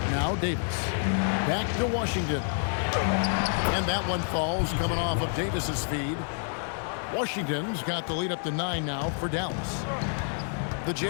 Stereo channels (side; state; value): right; silent; 59 dB below the other